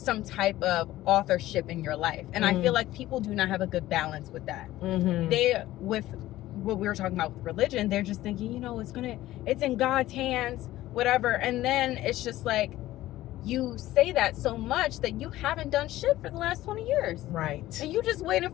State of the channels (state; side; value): quieter; right; 15.5 dB